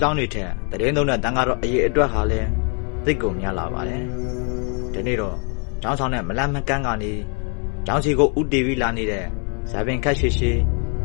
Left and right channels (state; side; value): quieter; right; 38.0 dB